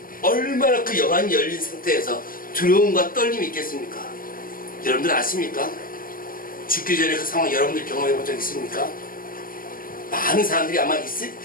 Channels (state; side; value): late; right; 0.41 ms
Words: 얼마나 그 영안이 열린 상태에서 두려움과 떨림이 있겠습니까? 여러분들 아십니까? 죽기 전에 그 상황 여러분들 경험해 본 적 있습니까? 많은 사람들이 아마